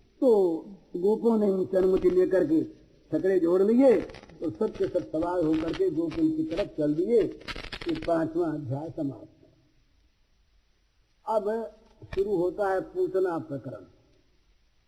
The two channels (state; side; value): identical; both; correlation 1.00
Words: तो गोपों ने उनसे अनुमति लेकर के छकड़े जोड़ लिए तो सब के सब सवार होकर के गोकुल की तरफ चल दिए। ये 5वां अध्याय समाप्त। अब शुरू होता है पूतना प्रकरण,